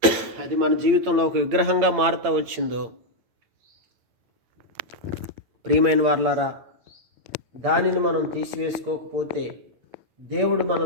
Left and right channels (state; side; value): late; left; 8.7 ms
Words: అది మన జీవితంలో ఒక విగ్రహంగా మారుతూ వచ్చిందో, ప్రియమైన వారలారా, దానిని మనం తీసివేసుకోకపోతే దేవుడు